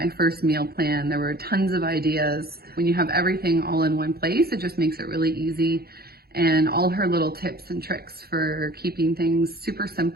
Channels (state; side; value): late; left; 0.45 ms